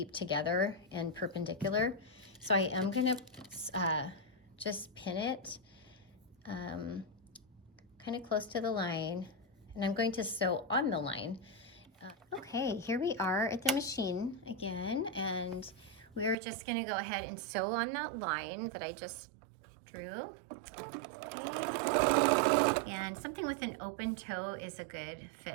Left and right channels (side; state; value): left; drops out; at 16.4 s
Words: together and perpendicular, so I am going to just pin it kind of close to the line, and I'm going to sew on the line. Okay, here we are at the machine again, and we're just going to go ahead and sew on that line that I just drew. Okay, and something with an open toe is a good